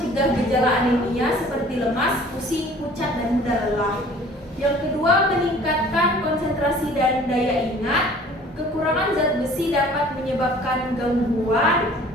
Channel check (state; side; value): normal; both; correlation 0.50